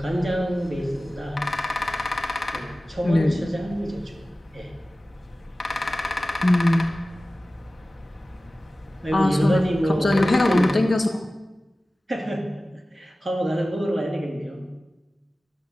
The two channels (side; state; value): both; normal; correlation 0.96